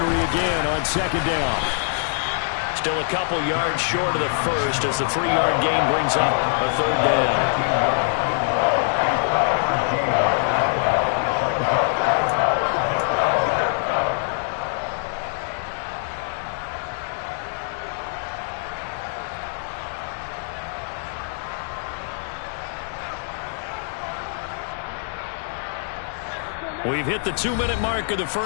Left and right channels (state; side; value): silent; right; 63 dB below the other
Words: again on second down. Still a couple yards short of the first as the 3-yard gain brings up a third down. We've hit the 2-minute mark of the